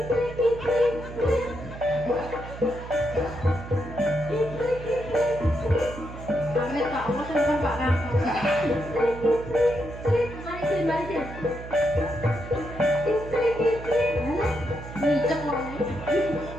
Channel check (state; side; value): noise; right; hum, 12 dB below the sound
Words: Amin Pak, Allah senang Pak Kang. Mari. Ngicek loh nih.